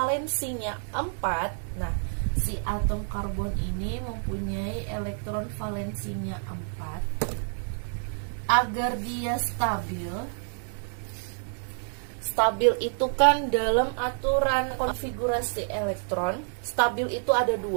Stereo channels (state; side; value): silent; left; digital silence